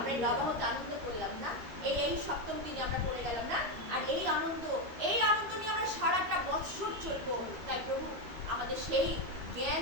নবাহতে আনন্দ করলাম না, এই সপ্তম দিনে আমরা করে গেলাম না, আর এই আনন্দ নিয়ে আমরা সারাটা বছর চলবো। তাই প্রভু আমাদের সেই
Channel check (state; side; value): late; left; 13 ms